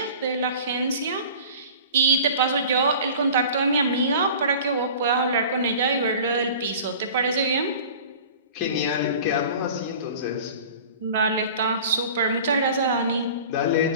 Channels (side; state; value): both; inverted; correlation -0.42